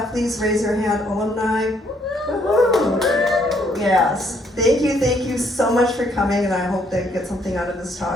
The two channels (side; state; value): both; normal; correlation 0.68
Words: please raise your hand. Alumni. Woo-hoo. Yes, thank you so much for coming, and I hope that you get something out of this